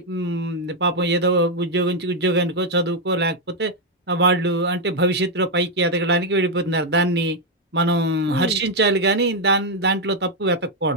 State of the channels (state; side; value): normal; both; correlation 0.01